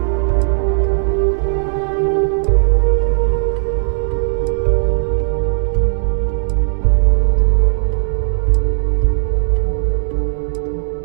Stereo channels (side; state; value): left; silent; 69 dB below the other